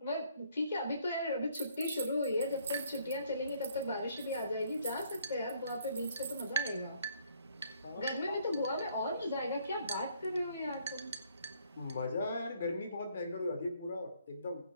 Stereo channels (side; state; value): both; inverted; correlation -0.65